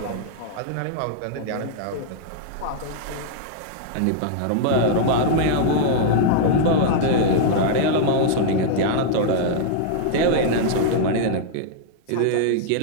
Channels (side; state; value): both; different; correlation -0.01